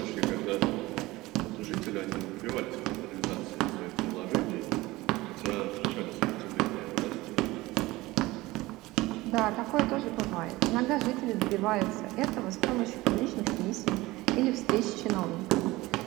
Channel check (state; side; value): quieter; left; 19.7 dB